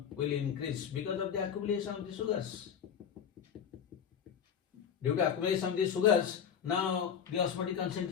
will increase because of the accumulation of the sugars. Due to accumulation of the sugars, now the osmotic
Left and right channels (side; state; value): right; quieter; 8.0 dB